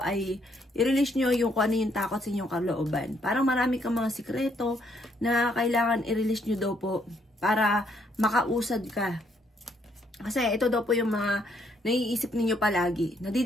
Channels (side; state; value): both; normal; correlation 0.71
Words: ay i-release nyo yung kung ano yung takot sa inyong kalooban. Parang marami kang mga sikreto na kailangan i-release nyo daw po para makausad ka. Kasi ito daw po yung mga naiisip ninyo palagi.